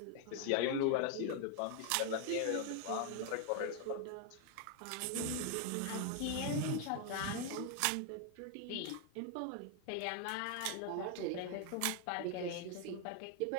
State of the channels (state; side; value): different; both; correlation 0.00